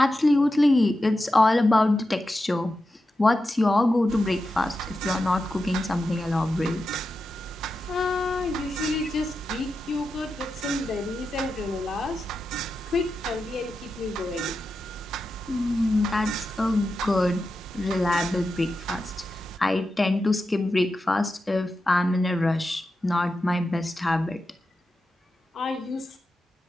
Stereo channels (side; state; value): both; normal; correlation 0.90